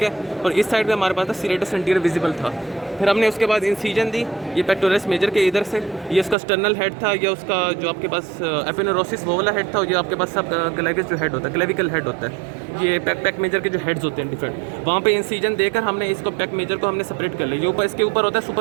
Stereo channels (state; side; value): drops out; left; at 6.4 s